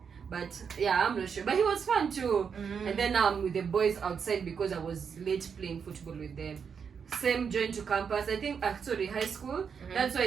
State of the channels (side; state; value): left; quieter; 6.6 dB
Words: But yeah, I'm not sure. But he was fun too. And then now I'm with the boys outside because I was late playing football with them. same joined to campus. I think actually high school. That's why